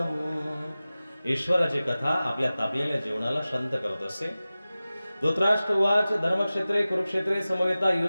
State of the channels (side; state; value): both; inverted; correlation -0.97